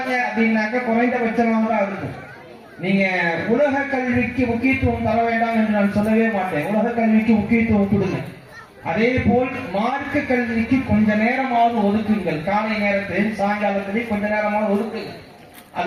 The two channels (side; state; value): both; identical; correlation 1.00